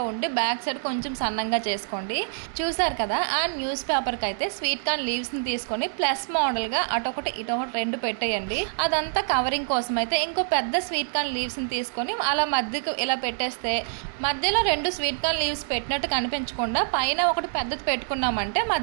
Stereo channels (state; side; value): silent; left; digital silence